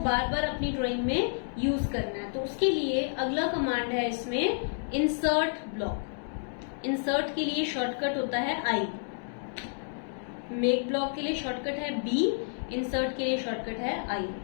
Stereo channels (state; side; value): silent; right; digital silence